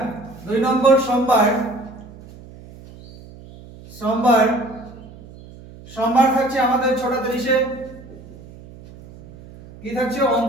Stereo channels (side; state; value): right; noise; hum, 19 dB below the sound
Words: 2 নম্বর সোমবার সোমবার থাকছে আমাদের 6:30-এ কি থাকছে